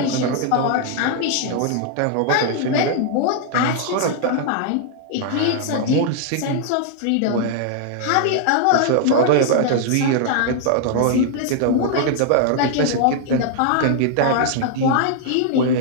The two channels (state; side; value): different; both; correlation 0.00